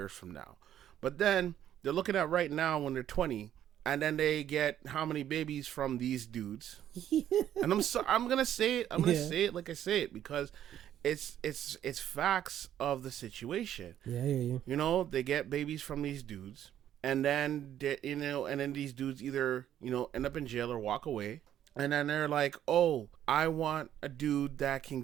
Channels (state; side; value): quieter; left; 11.0 dB